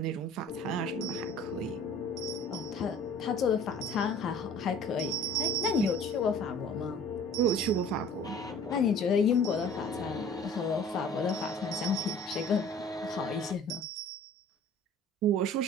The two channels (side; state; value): both; normal; correlation 0.48